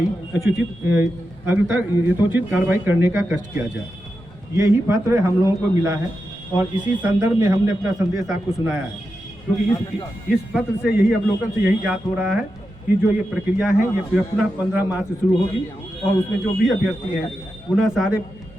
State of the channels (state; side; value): normal; both; correlation 0.89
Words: यथोचित कार्रवाई करने का कष्ट किया जाए। यही पत्र हम लोगों को मिला है और इसी संदर्भ में हमने अपना संदेश आपको सुनाया है, क्योंकि इस पत्र से यही अवलोकन से यही ज्ञात हो रहा है कि जो ये प्रक्रिया है ये पुनः 15 मार्च से शुरू होगी और उसमें जो भी अभ्यर्थी हैं पुनः सारे